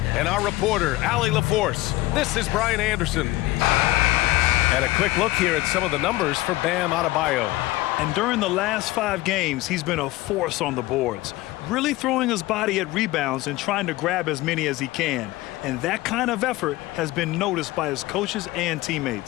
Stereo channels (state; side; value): quieter; right; 18.5 dB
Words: and our reporter, Allie LaForce. This is Brian Anderson. And a quick look here at some of the numbers for Bam Adebayo. And during the last 5 games, he's been a force on the boards, really throwing his body at rebounds and trying to grab as many as he can. And that kind of effort has been noticed by his coaches and